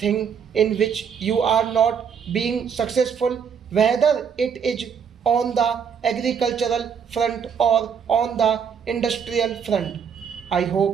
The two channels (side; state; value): left; quieter; 7.0 dB